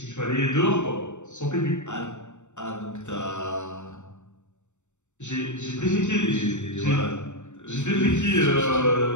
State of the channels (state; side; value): late; right; 0.84 ms